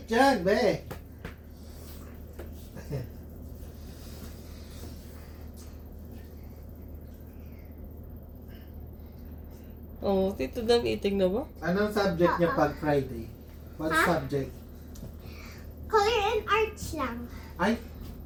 yan, be. Oh, Tito done eating na ba? Anong subject niya pag Friday? What Ha? subject? Color and arts lang. Ay,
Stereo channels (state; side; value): identical; both; correlation 1.00